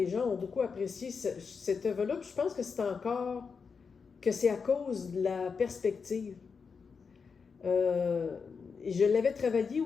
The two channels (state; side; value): quieter; right; 5.5 dB